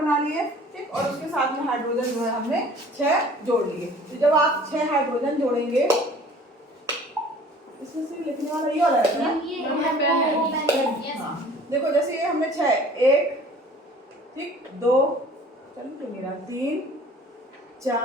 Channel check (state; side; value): normal; both; correlation 0.49